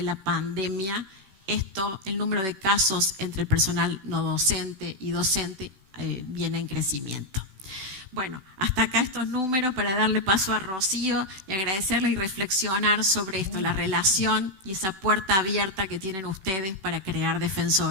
la pandemia. El número de casos entre el personal no docente y docente viene en crecimiento. Bueno, hasta acá estos números para darle paso a Rocío y agradecerle y reflexionar sobre esto, la relación y esa puerta abierta que tienen ustedes para crear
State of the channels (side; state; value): left; late; 16 ms